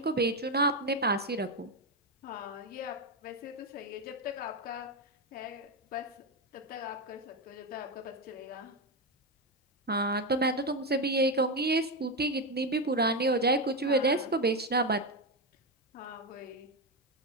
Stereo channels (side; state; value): both; normal; correlation 0.10